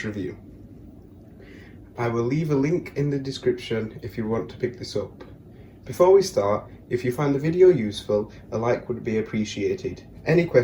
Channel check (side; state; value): both; identical; correlation 1.00